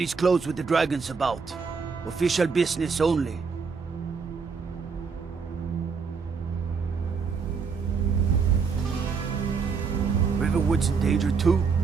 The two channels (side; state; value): left; quieter; 5.4 dB